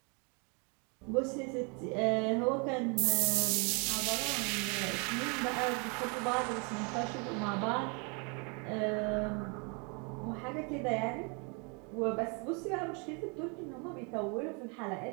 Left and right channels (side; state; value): left; quieter; 33.9 dB